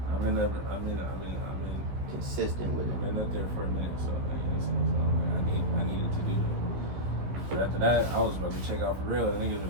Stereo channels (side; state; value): left; late; 15 ms